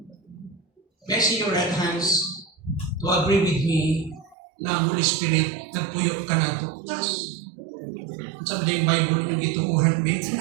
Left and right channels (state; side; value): drops out; left; at 4.4 s